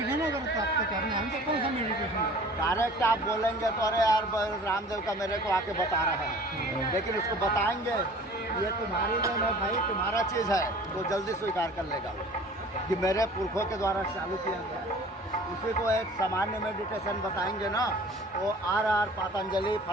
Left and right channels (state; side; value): normal; both; correlation 0.47